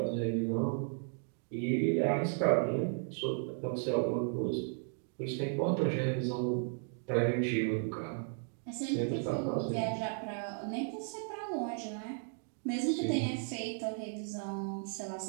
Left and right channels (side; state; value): left; silent; 54 dB below the other